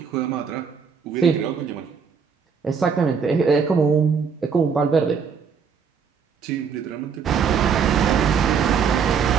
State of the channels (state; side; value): quieter; left; 6.3 dB